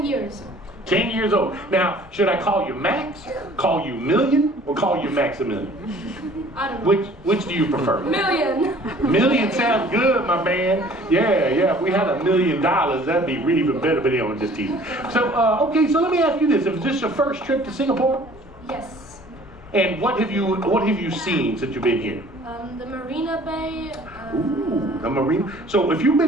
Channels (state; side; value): normal; both; correlation 0.52